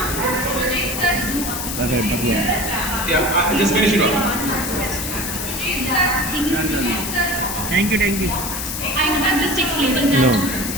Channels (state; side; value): noise; left; hiss, 4 dB below the sound